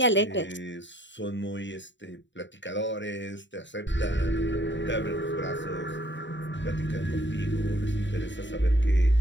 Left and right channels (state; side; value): late; right; 0.53 ms